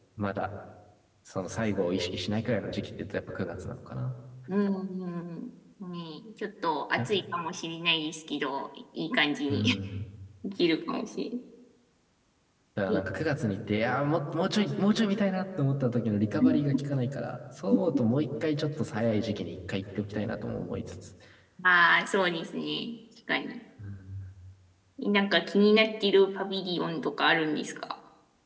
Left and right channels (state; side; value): identical; both; correlation 1.00